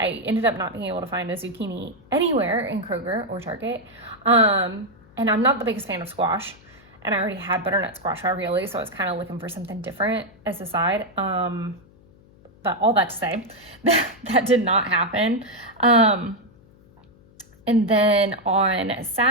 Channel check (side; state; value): left; noise; hum, 27 dB below the sound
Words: ended up not being able to find a zucchini anywhere in Kroger or Target. And I'm not the biggest fan of squash, and I already had butternut squash ravioli, so I was kind of looking for something different as a side. But all that to say, that did not happen. And then on